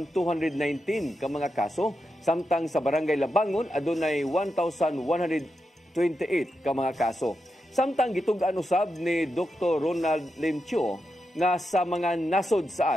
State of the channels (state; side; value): normal; both; correlation 0.87